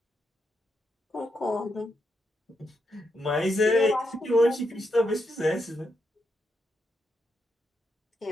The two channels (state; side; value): normal; both; correlation 0.82